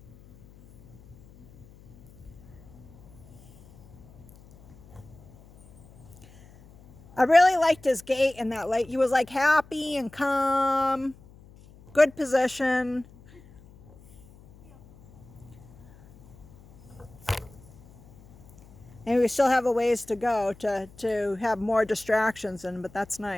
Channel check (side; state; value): left; noise; hum, 23 dB below the sound